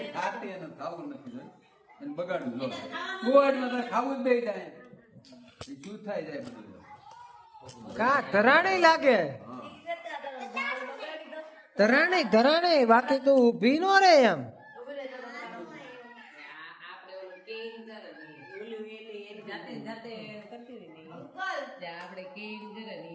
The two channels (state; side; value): identical; both; correlation 1.00